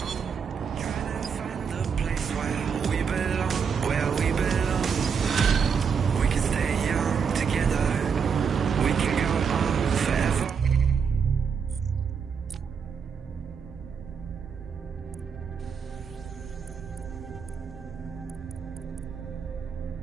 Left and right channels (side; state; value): left; quieter; 6.5 dB